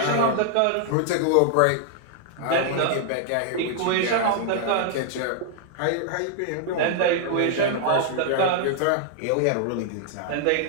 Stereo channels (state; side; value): different; both; correlation 0.00